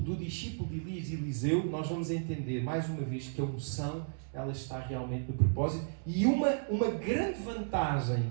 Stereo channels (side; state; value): left; silent; digital silence